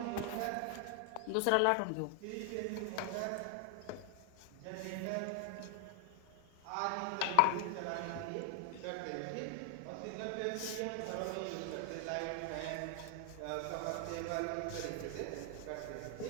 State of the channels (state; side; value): different; both; correlation 0.00